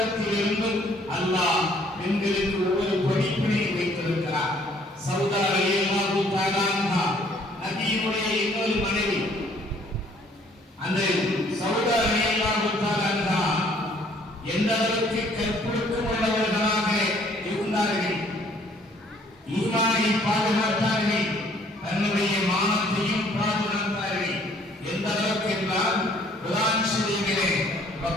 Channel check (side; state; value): both; normal; correlation 0.61